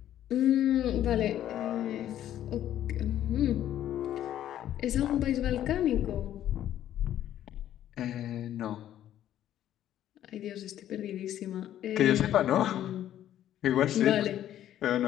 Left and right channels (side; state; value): right; quieter; 11.8 dB